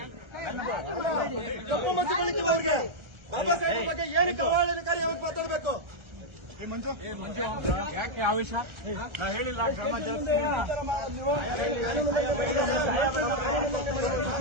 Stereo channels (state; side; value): late; left; 1.3 ms